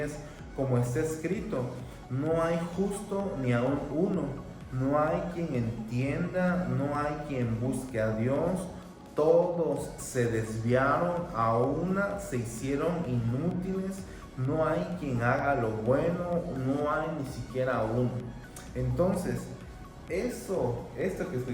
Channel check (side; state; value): both; identical; correlation 1.00